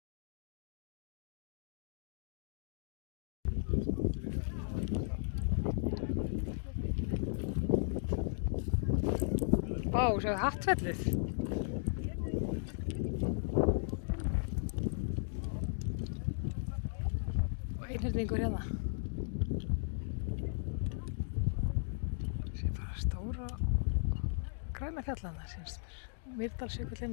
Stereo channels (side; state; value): right; silent; digital silence